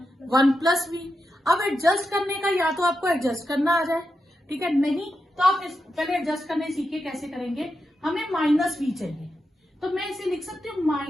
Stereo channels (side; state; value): both; normal; correlation 0.87